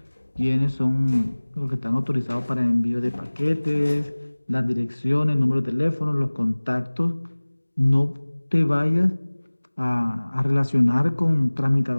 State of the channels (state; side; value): inverted; both; correlation -1.00